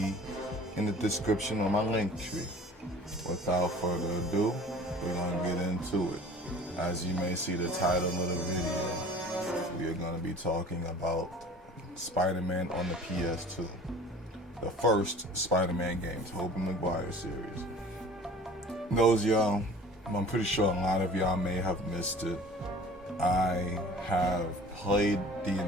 in the description on my link tree. Without further ado, we're going to get into it. As you may see the title of the video, we are going to be talking about Spider-Man on the PS2. The first Spider-Man game, Tobey Maguire series. Those y'all, I'm pretty sure a lot of y'all may have missed it. I have played the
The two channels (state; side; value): normal; both; correlation 0.46